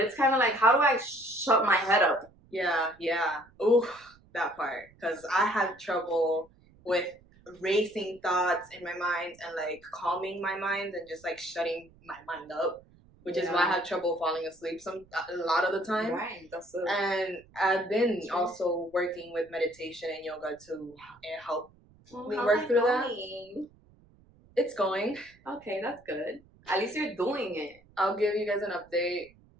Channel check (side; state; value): right; noise; rumble, 28 dB below the sound